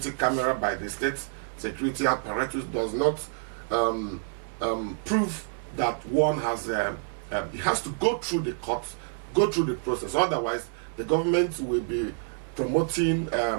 camera by the state security apparatus does not prove that one has, it has to go through the courts, go through the process. Otherwise, the government will be promoting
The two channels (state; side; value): silent; left; digital silence